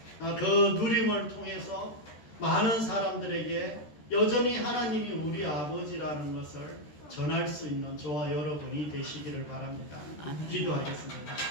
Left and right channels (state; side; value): late; right; 13 ms